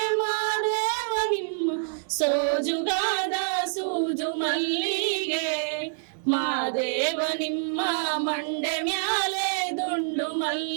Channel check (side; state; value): left; silent; digital silence